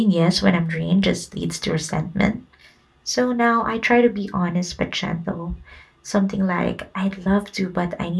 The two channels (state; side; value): identical; both; correlation 1.00